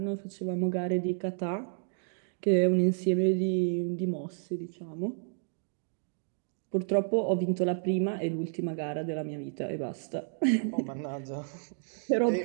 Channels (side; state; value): left; silent; digital silence